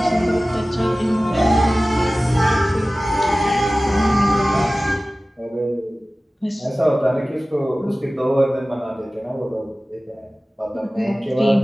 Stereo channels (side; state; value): both; normal; correlation 0.97